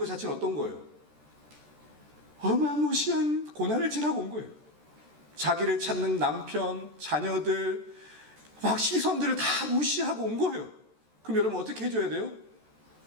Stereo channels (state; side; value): late; left; 14 ms